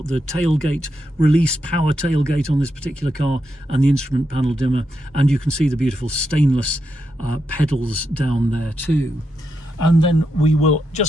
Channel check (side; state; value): both; normal; correlation 0.84